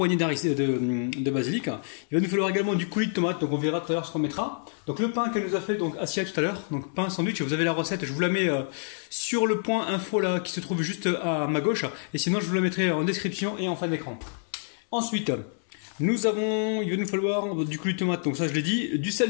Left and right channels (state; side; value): silent; right; 60 dB below the other